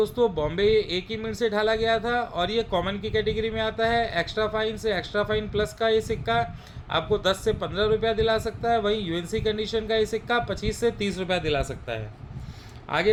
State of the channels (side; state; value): both; identical; correlation 1.00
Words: बॉम्बे एक ही मिनट से ढाला गया था और ये कॉमन की कैटेगरी में आता है। एक्स्ट्रा फाइन से एक्स्ट्रा फाइन प्लस का ये सिक्का आपको 10 से 15 रुपया दिला सकता है। वहीं यूएनसी कंडीशन का ये सिक्का 25 से 30 रुपया दिला सकता है। आगे